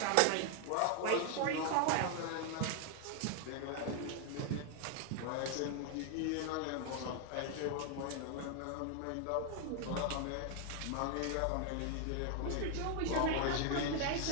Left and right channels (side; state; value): both; different; correlation 0.00